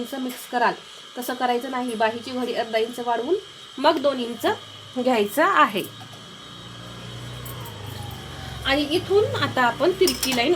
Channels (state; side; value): identical; both; correlation 1.00